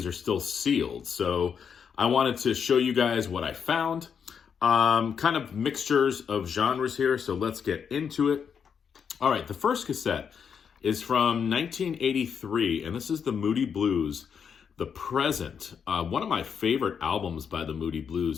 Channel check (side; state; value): right; quieter; 7.0 dB